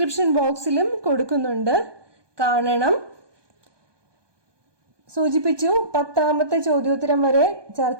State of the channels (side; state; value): left; late; 1.2 ms